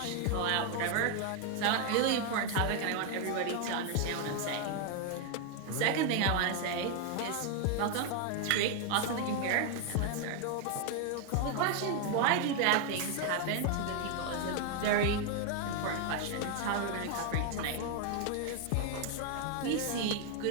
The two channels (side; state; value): both; different; correlation 0.01